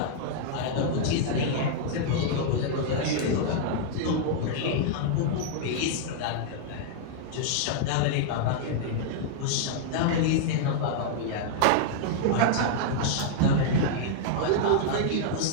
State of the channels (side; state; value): both; different; correlation -0.01